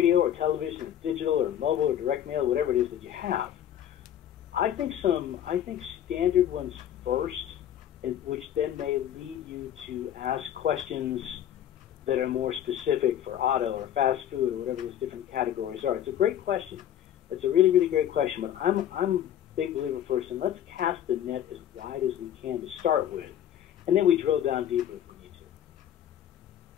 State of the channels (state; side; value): quieter; right; 10.6 dB